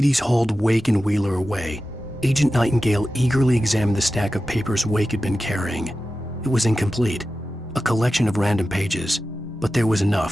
hauled Wake and Wheeler away, Agent Nightingale eagerly examined the stack of papers Wake had been carrying. It was incomplete, a collection of random pages, but there was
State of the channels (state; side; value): normal; both; correlation 0.93